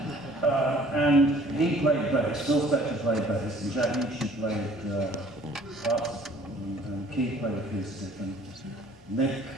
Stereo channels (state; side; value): normal; both; correlation 0.54